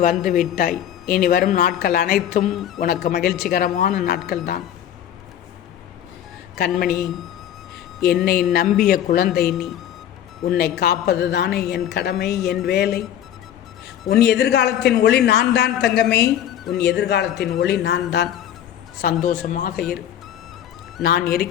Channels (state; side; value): quieter; right; 10.6 dB